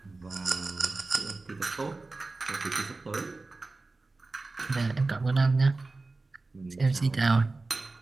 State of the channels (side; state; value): left; quieter; 3.5 dB